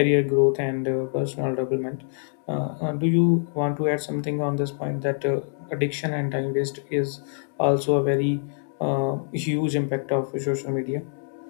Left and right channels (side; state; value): right; silent; 62 dB below the other